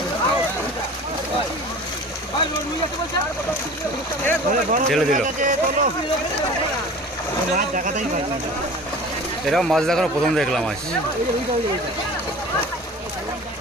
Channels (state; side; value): normal; both; correlation 0.40